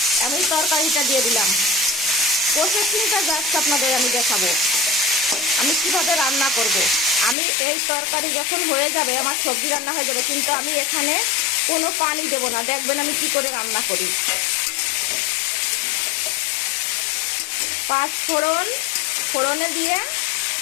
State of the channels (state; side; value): drops out; right; at 7.4 s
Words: আমি তরকারিটা দিয়ে দিলাম। প্রসেসিংটা জাস্ট আপনাদের আমি দেখাবো আমি কিভাবে রান্না করব। আমি এই তরকারি যখন হয়ে যাবে, আমার সবজি রান্না হয়ে যাবে, কিন্তু আমি এখানে কোনো পানি দেবো না। দেখবেন আমি কি করে রান্না করি। 5 ফোড়ন, ফোড়নে দিয়ে